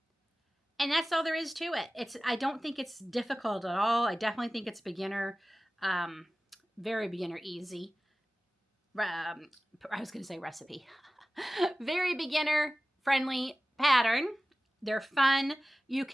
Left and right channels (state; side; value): normal; both; correlation 0.96